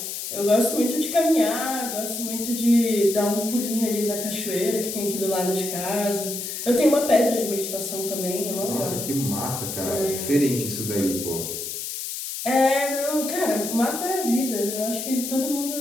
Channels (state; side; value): noise; left; hiss, 6 dB below the sound